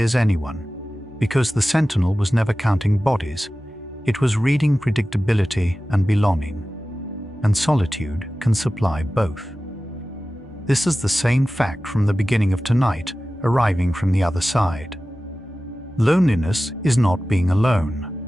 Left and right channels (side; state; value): both; normal; correlation 0.95